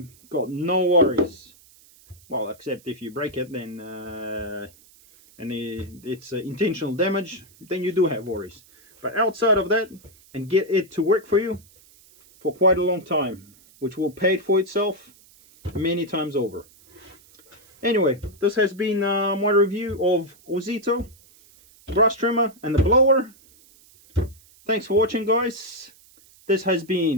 got no worries. Well, except if you break it, then and it's intentional damage, then you do have worries. But outside of that, and get it to work for you for quite a long time, which will pay for itself many times over. Anyway, this has been my review of OZITO grass trimmer and the blower. Thanks for watching, guys. This has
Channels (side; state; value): right; noise; hiss, 27 dB below the sound